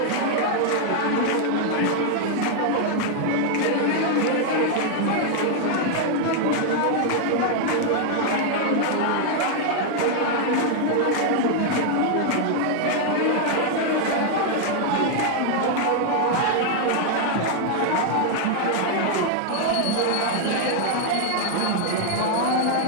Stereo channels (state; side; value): different; both; correlation 0.00